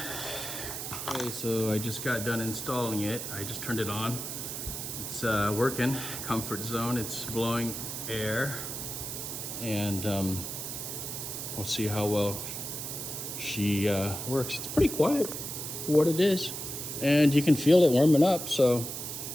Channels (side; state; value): right; noise; hiss, 6 dB below the sound